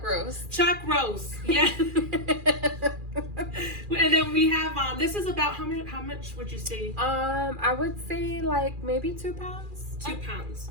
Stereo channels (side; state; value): left; late; 2.4 ms